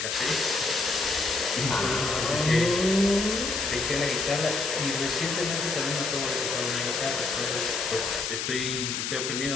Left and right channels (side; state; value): left; noise; hiss, 2 dB below the sound